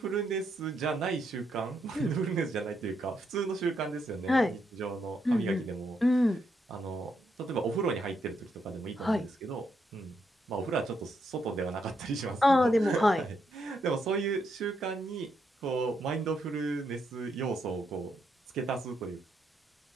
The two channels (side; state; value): both; normal; correlation 0.78